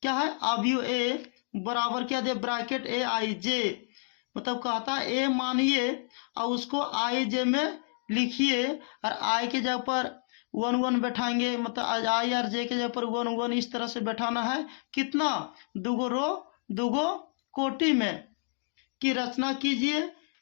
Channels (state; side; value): silent; right; digital silence